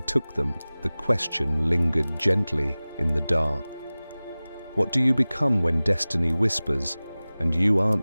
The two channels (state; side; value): inverted; both; correlation -0.99